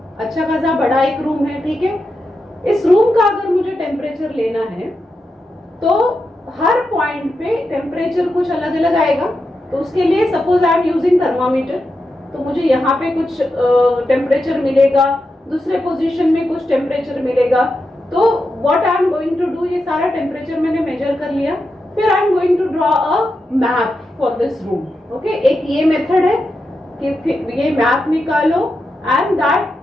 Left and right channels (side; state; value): both; normal; correlation 0.87